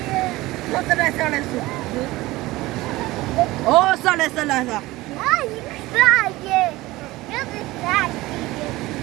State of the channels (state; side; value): quieter; left; 19.1 dB